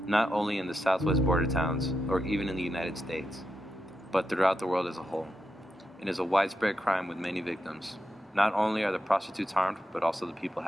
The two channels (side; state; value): both; normal; correlation 0.86